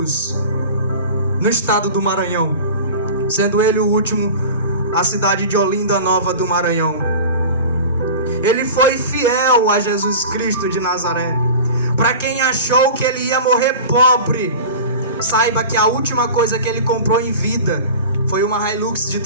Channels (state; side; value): inverted; both; correlation -0.35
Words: no estado do Maranhão, sendo ele o último a cidade de Olinda Nova do Maranhão. Ele foi fiel a Jesus Cristo de Nazaré. Para quem achou que ele ia morrer pobre, saiba que a última coisa que ele comprou em vida foi uma Hilux de